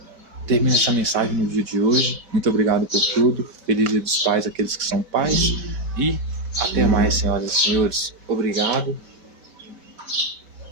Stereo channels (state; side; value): late; left; 5.2 ms